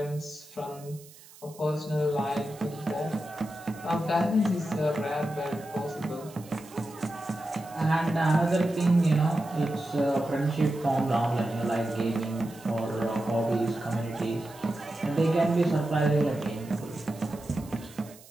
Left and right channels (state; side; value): noise; right; hiss, 22 dB below the sound